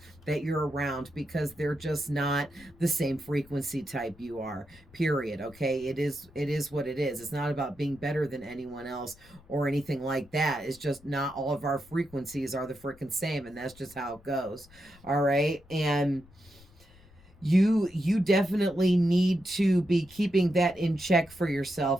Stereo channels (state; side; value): noise; left; rumble, 25 dB below the sound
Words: that you're around, because they're just not the same frequency type you are, period. Okay, it is what it is. It's not about being better than anyone else or anything like that. It's just not all of our frequencies are the freaking same, and that's just how it goes. All right, and you definitely need to be keeping that in check for